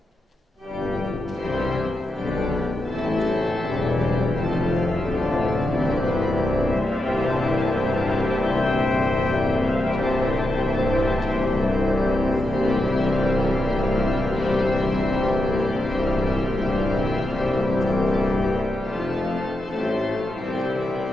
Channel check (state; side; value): normal; both; correlation 0.86